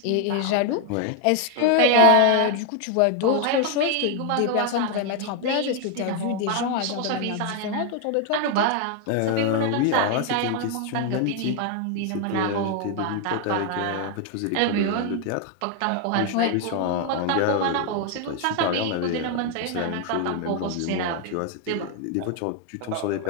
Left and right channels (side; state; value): both; different; correlation 0.01